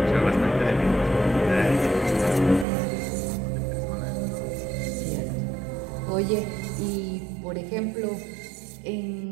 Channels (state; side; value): drops out; left; at 2.7 s